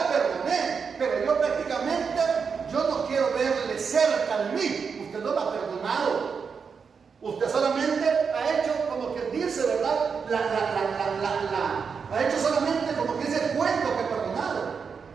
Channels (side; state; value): left; quieter; 5.9 dB